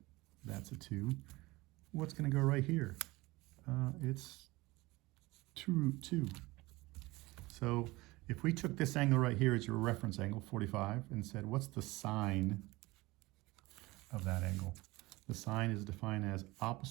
That's a 2. What's going to go right here? It's 2 root 2. So if we took this angle right here as your reference angle, 45, and said, what's the sine of that angle? The sine is defined as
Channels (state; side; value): quieter; left; 21.2 dB